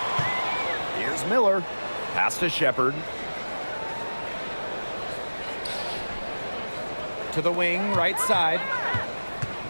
Here's Miller. Pass to Shepard. To the wing, right side.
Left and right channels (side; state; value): both; inverted; correlation -1.00